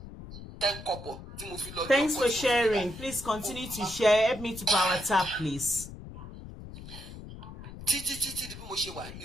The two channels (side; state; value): left; noise; rumble, 13 dB below the sound